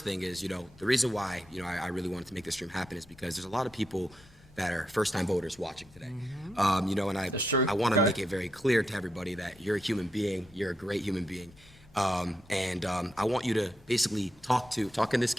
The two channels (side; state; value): both; normal; correlation 0.83